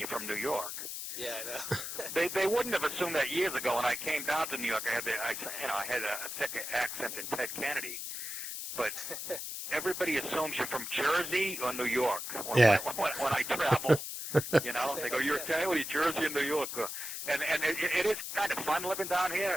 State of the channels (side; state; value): left; noise; hiss, 6 dB below the sound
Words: from New York. Yeah, I know. They wouldn't have assumed that years ago. When I came down to New York, I had a thick accent in Ted Kennedy. But everybody assumes you're from Jersey or New York when I travel. They go, "You're Italian? Well, you're Jersey or New York?" And it is kind of fun living down